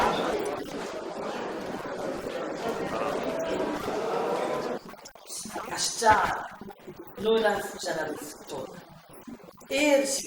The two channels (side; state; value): both; identical; correlation 1.00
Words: ny Madagasikara no nametraka amin'ny fitoriana izany hoe ny iray apa-efatra izy ireo. Ny 18 Martsa nametraka mémoire de défense ho fanoherana izany Christine Razanamaso milaza fa